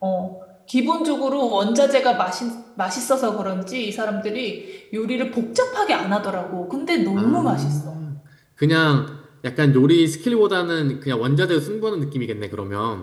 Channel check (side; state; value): both; identical; correlation 1.00